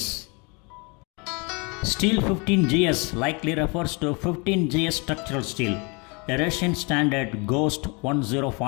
Steel 15 GS likely refers to 15 GS structural steel, a Russian standard GOST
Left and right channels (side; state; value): right; quieter; 30.6 dB